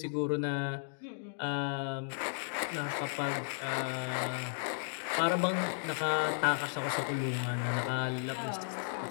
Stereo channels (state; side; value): silent; right; digital silence